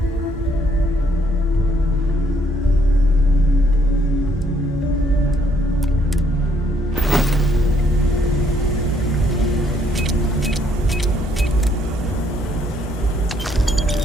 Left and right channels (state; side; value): normal; both; correlation 0.68